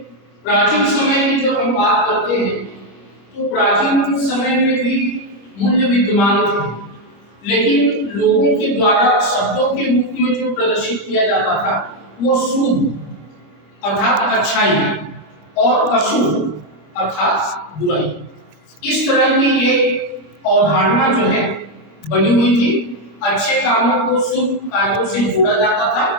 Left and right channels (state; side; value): late; right; 25 ms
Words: प्राचीन समय की जब हम बात करते हैं तो प्राचीन समय में भी मूल्य विद्यमान थे, लेकिन लोगों के द्वारा शब्दों के रूप में जो प्रदर्शित किया जाता था वो शुभ अर्थात अच्छाई और अशुभ अर्थात बुराई, इस तरह की एक अवधारणा जो है बनी हुई थी। अच्छे कामों को शुभ कार्यों से जोड़ा जाता था